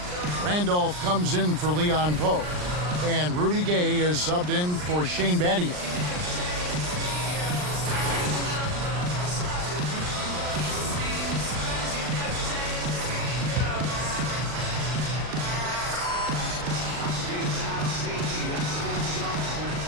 Randolph comes in for Leon Poe. And Rudy Gay is subbed in for Shane Battier.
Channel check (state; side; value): late; left; 39 ms